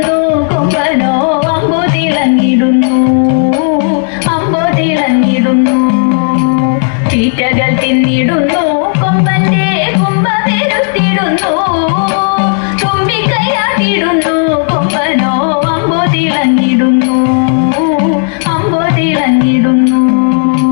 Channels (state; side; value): silent; right; 63 dB below the other